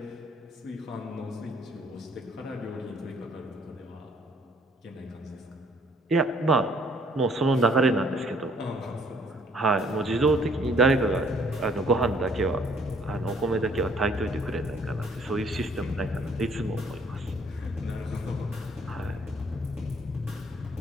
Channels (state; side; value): normal; both; correlation 0.62